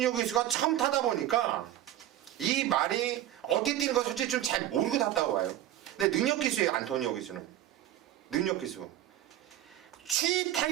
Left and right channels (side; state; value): left; quieter; 12.8 dB